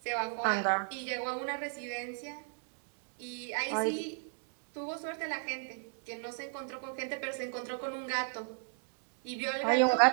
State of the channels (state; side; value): silent; left; 54 dB below the other